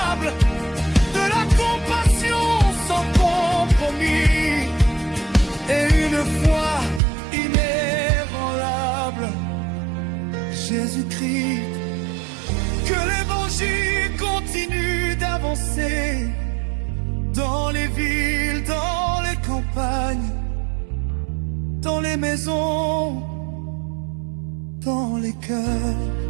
de la compassion sans compromis et une foi inébranlable. Jésus-Christ, que l'évangile continue d'avancer dans les villes, dans les campagnes, dans les maisons, dans les cœurs.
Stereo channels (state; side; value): drops out; left; at 7.0 s